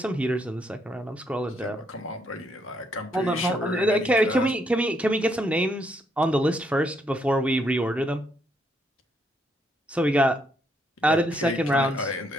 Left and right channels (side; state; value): both; normal; correlation 0.74